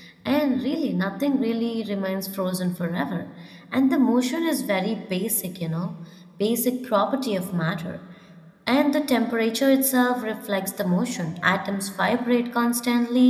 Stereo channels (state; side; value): identical; both; correlation 1.00